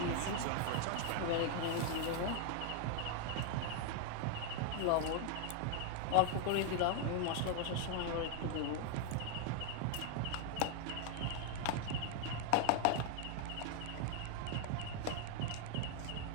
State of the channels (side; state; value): both; different; correlation 0.00